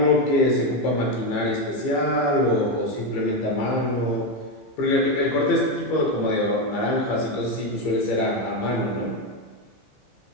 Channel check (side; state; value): right; late; 15 ms